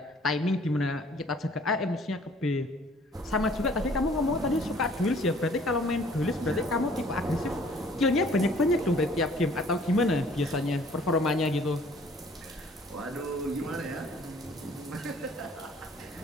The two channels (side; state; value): both; normal; correlation 0.56